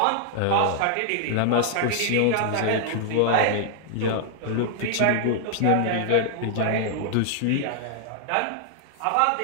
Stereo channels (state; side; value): different; both; correlation -0.01